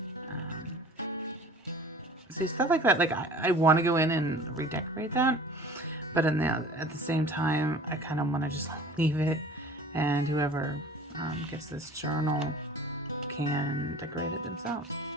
See, stuff like that, like I want to go in and redecorate that, but at the same time, I kind of want to just leave it, and whoever gets this journal can decorate it themselves.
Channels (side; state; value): both; normal; correlation 0.45